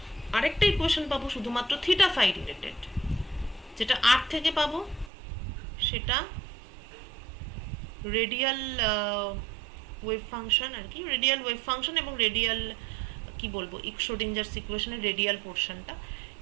আরেকটা ইকুয়েশন পাবো শুধুমাত্র থিটা ফাই রিলেটেড। যেটা আর থেকে পাবো সেটা রেডিয়াল ওয়েভ ফাংশন আর কি, রেডিয়াল ওয়েভ ফাংশন এবং রেডিয়াল কি বলবো শ্রোডিঞ্জারস ইকুয়েশনের রেডিয়াল পোর্শনটা।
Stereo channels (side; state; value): left; drops out; at 5.1 s